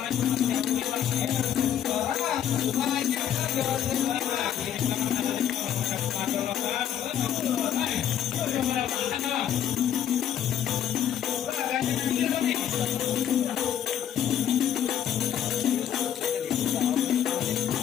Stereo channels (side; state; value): right; quieter; 9.9 dB